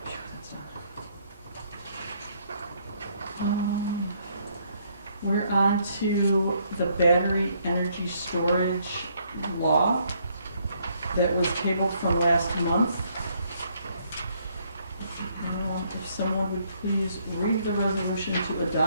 We're on to the battery energy storage law that was tabled from last month. If someone would please read the resolution to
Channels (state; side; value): inverted; both; correlation -0.69